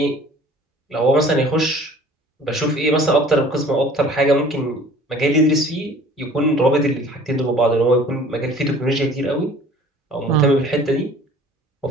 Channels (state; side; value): normal; both; correlation 0.49